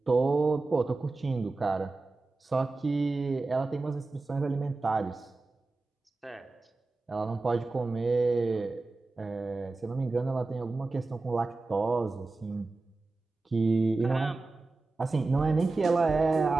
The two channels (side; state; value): left; quieter; 3.5 dB